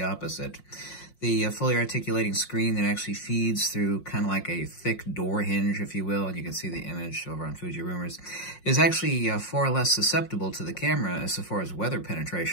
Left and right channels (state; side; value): late; right; 5.5 ms